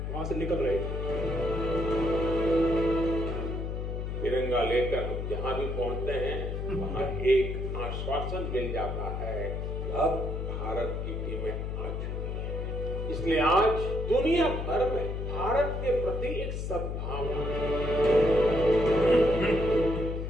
वहां से निकल रहे थे। तिरंगा लेकर हम जहां भी पहुंचते हैं वहां एक आश्वासन मिल जाता है, अब भारत की टीमें आ चुकी हैं। इसलिए आज दुनिया भर में भारत के प्रति एक सद्भावना।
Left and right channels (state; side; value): noise; left; hum, 3 dB below the sound